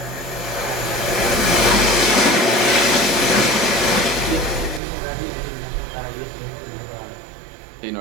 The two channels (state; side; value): drops out; left; at 4.8 s